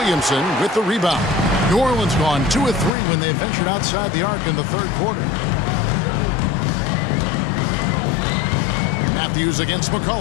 with the rebound. New Orleans gone 2 of 3 when they ventured outside the arc in the third quarter. Matthews against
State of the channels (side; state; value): right; drops out; at 3.0 s